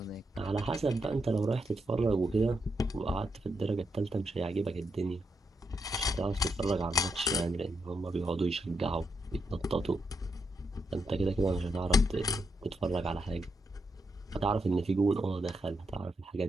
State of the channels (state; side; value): normal; both; correlation 0.81